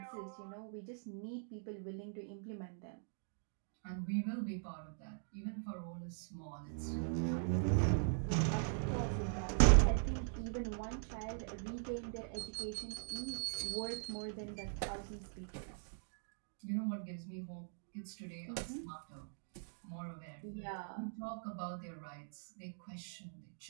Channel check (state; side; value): silent; left; digital silence